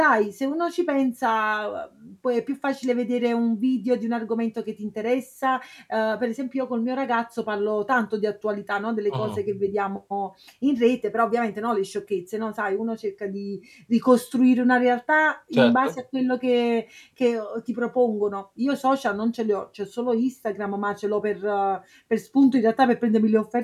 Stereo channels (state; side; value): identical; both; correlation 1.00